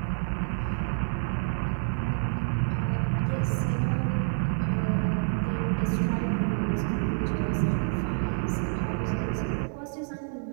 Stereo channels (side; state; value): left; silent; digital silence